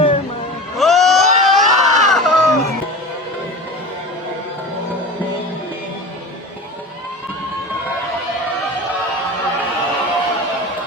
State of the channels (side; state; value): both; normal; correlation 0.31